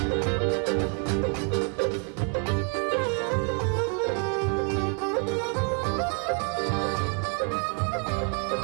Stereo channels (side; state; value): left; quieter; 39.9 dB